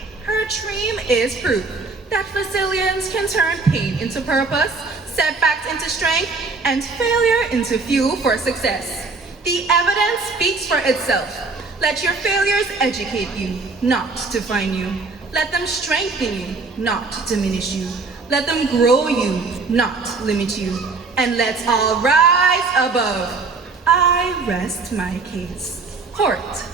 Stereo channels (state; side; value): quieter; left; 4.0 dB